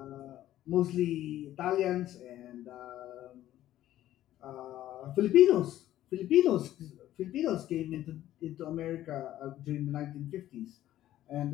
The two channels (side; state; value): right; quieter; 13.3 dB